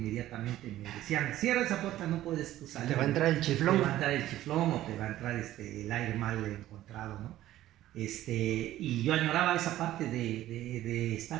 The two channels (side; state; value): left; quieter; 14.1 dB